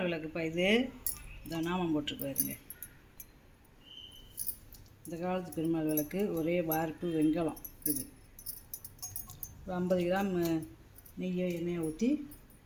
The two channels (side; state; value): both; identical; correlation 1.00